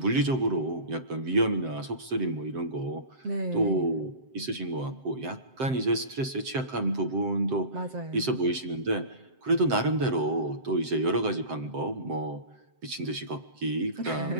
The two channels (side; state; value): left; late; 7.7 ms